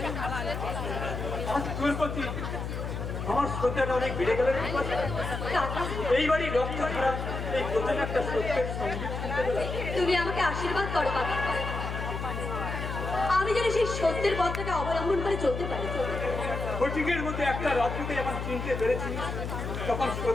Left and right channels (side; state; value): left; noise; hum, 5 dB below the sound